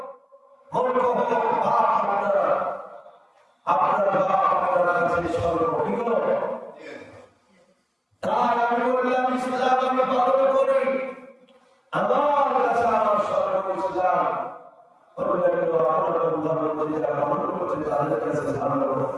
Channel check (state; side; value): identical; both; correlation 1.00